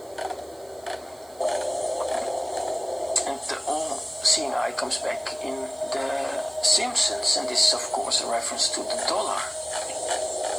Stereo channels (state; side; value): noise; right; hiss, 26 dB below the sound